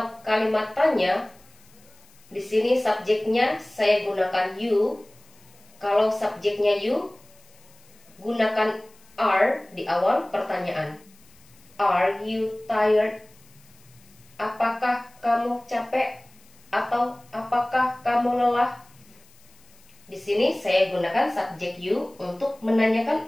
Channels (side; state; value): left; noise; hiss, 28 dB below the sound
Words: kalimat tanya, Di sini subjeknya saya gunakan you. Kalau subjeknya you, gunakan are di awal pertanyaan. Are you tired? Apakah kamu capek? Atau apakah kamu lelah? Di sini saya gunakan subjek you untuk menanyakan